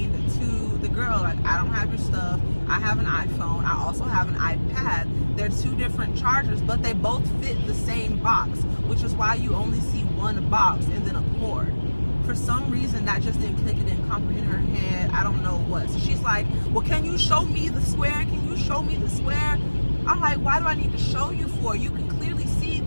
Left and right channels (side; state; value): both; inverted; correlation -1.00